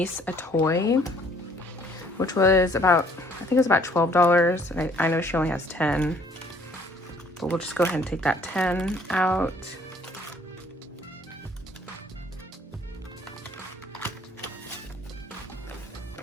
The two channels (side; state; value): both; normal; correlation 0.60